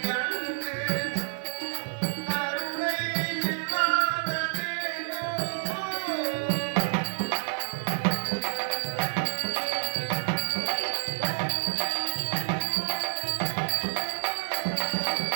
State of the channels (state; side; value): silent; left; digital silence